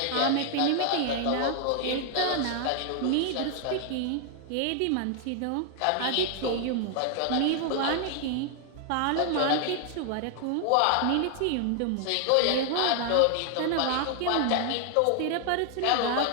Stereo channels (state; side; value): different; both; correlation 0.00